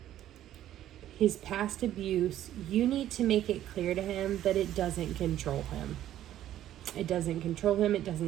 His past abuse, you need to make it clear to him that it doesn't control him. It doesn't control him. It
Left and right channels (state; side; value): quieter; left; 12.3 dB